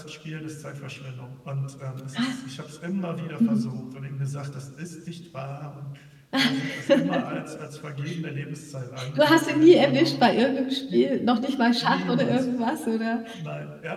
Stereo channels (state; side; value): identical; both; correlation 1.00